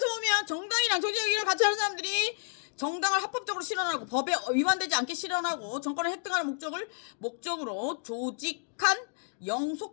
보면 정당이랑 정치적인 같이 하는 사람들이 정당을 합법적으로 실현하고 법에 위반되지 않게 실현하고 정권을 획득하는 목적으로 조직한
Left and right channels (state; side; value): silent; right; digital silence